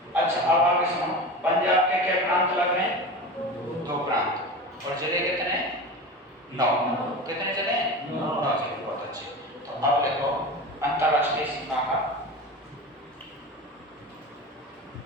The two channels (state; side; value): normal; both; correlation 0.29